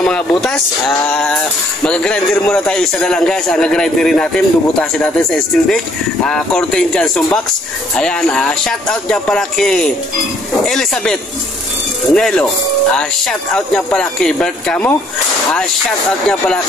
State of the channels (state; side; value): normal; both; correlation 0.64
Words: mga butas. Mag-grinder muna tayo isa na lang guys. Nag-grinderin natin, bubutasin natin sa steel deck. Cortez Johnson Box. Ayan, shout out niya pala kay Elizabeth Nelo. Shout out niya pala kay Bert Camo. Shout out niya pala